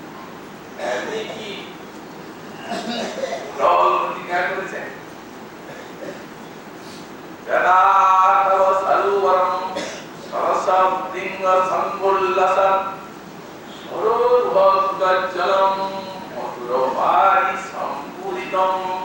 আপনি কি প্রতিজ্ঞা করেছেন? যদা তব সরোবরম সরসম লিঙ্গ সম্বুল্লসম সরোর্ভগজ্জলম মধুরভারি সম্পূরিতম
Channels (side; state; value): both; identical; correlation 1.00